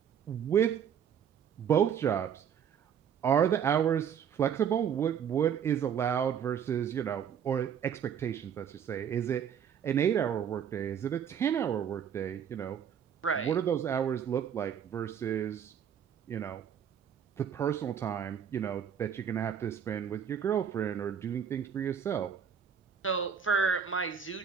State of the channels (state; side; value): quieter; left; 8.2 dB